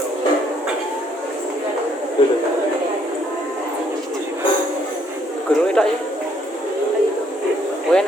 Guru itu ya. Kowe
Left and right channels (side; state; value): both; normal; correlation 0.68